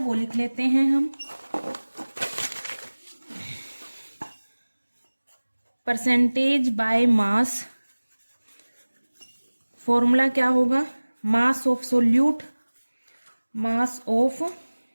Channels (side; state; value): both; inverted; correlation -1.00